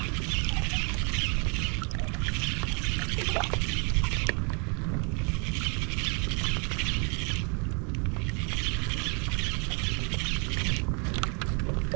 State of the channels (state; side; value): quieter; left; 35.8 dB